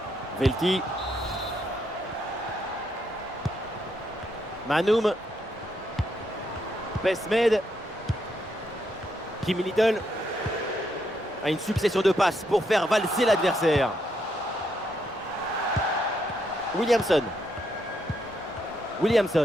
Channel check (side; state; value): both; normal; correlation 0.77